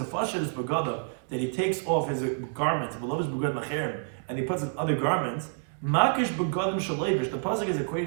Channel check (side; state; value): left; silent; digital silence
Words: Fasher is Begadav, that he takes off his garments, Beloved is Begad Macherim, and he puts on other garments, Makish Begadim Shalevish, the Pasuk is